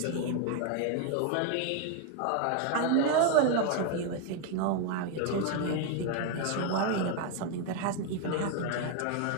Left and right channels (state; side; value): different; both; correlation 0.01